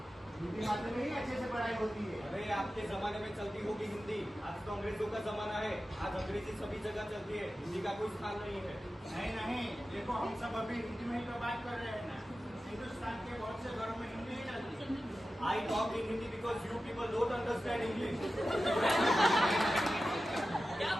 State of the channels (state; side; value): normal; both; correlation 0.93